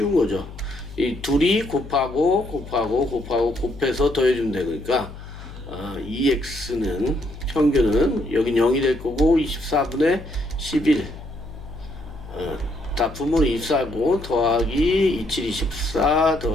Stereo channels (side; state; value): left; noise; hum, 14 dB below the sound